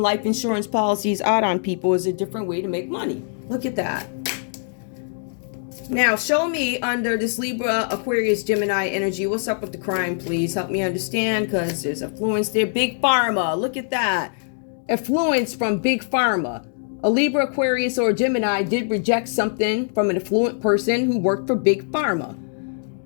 life insurance policies out on people as a different way to make money. Look at that. Now, show me under this Libra, Aquarius, Gemini energy. What's up with the crime, please? Help me understand, because there's affluence there. Big Pharma. Look at that. Affluence from Big Pharma. A Libra, Aquarius, or Gemini did reject something from an affluent person who worked for Big Pharma.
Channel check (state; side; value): silent; right; digital silence